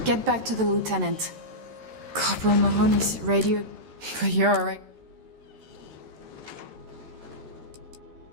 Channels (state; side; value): late; left; 13 ms